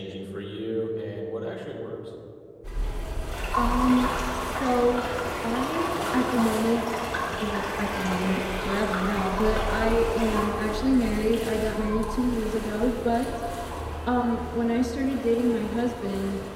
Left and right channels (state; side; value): identical; both; correlation 1.00